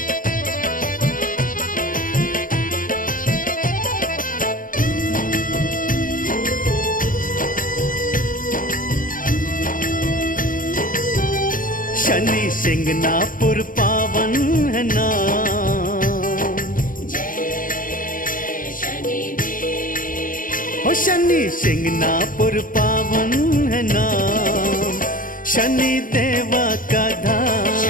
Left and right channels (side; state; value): right; late; 0.40 ms